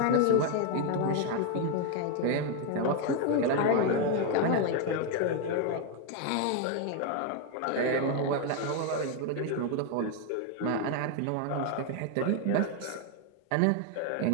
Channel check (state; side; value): different; both; correlation 0.01